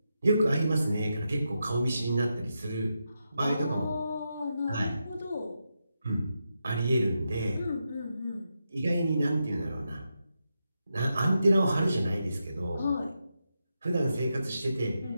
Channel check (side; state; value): both; inverted; correlation -0.86